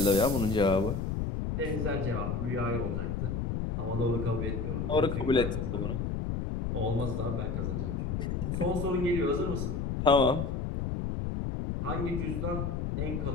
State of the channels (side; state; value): left; noise; rumble, 1 dB below the sound